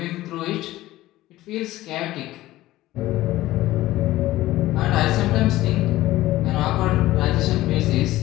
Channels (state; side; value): quieter; right; 16.3 dB